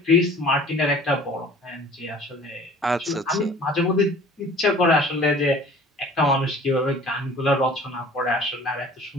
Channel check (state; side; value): normal; both; correlation 0.48